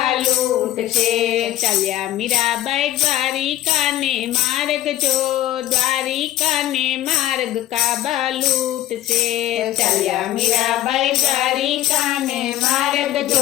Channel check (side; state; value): right; quieter; 13.8 dB